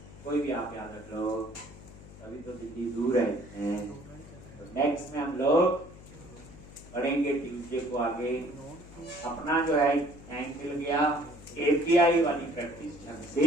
कोई भी आप याद रख लो, अभी तो दिल्ली दूर है। तो नेक्स्ट में हम लोग पढ़ेंगे ट्यूसडे को आगे, अपना जो है टाइम मिल गया, API वाली प्रैक्टिस ढंग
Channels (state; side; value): noise; left; hum, 18 dB below the sound